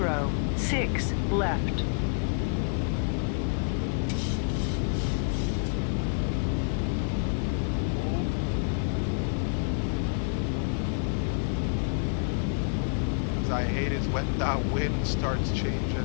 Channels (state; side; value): silent; right; 56 dB below the other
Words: left. As I hate is when that wind starts